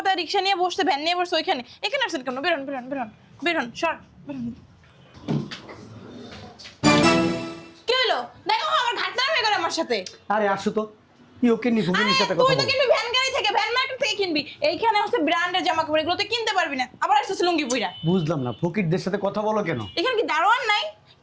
রিক্সা নিয়ে বসতে, ভ্যান নিয়ে বসতে, ওইখানে এখানে আসছেন কেন? বেরোন বেরোন বেরোন বেরোন, সর বেরোন। কি হলো? দেখো আমার ঘাটটা হয়ে গেল আমার সাথে। আরে আসো তো, কি ওকে নি ভুগিনির সাথে কথা তুই তো বল। কিনবি ভ্যান গাড়ি থেকে, ভ্যান মার্কেট থেকে কিনবি। এইখানে হচ্ছে ব্র্যান্ডের জামা কাপড়, এগুলো তো কিনতে পারবি না। আবার আসছিস লুঙ্গি পুইরা। বুঝলাম না ফকিরদের সাথে কথা বলো কেন? এখানে কি দারোয়ান নাই?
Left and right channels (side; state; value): both; identical; correlation 1.00